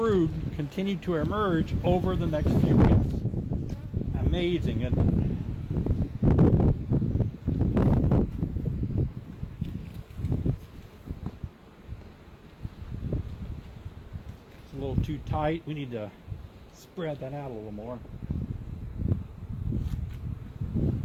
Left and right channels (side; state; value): both; identical; correlation 1.00